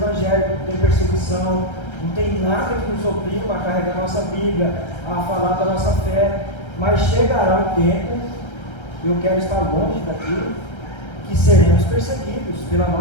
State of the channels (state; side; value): late; right; 1.3 ms